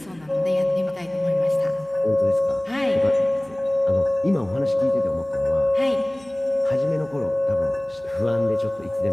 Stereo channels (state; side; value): noise; right; hum, 27 dB below the sound